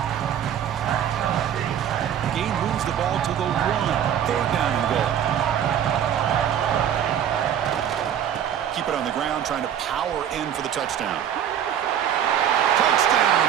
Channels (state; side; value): quieter; left; 9.6 dB